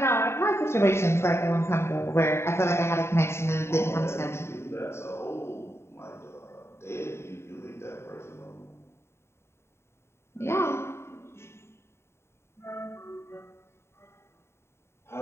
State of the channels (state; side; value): late; right; 0.13 ms